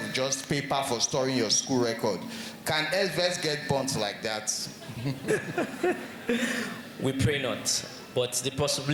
just paper for storing your school record. Can Edvest get burnt like that? We pray not, but the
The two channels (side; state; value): both; identical; correlation 1.00